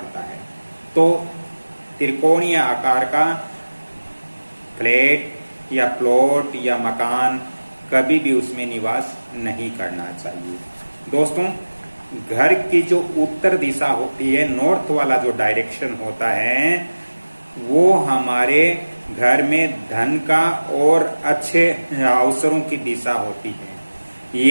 है। तो त्रिकोणीय आकार का फ्लैट या प्लॉट या मकान कभी भी उसमें निवास नहीं करना चाहिए। दोस्तों, घर की जो उत्तर दिशा होती है, नॉर्थ वाला जो डायरेक्शन होता है, वो हमारे घर में धन का और अच्छे अवसरों की दिशा होती है।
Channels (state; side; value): inverted; both; correlation -1.00